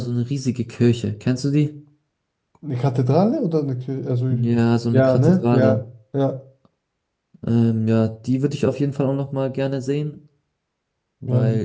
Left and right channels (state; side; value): identical; both; correlation 1.00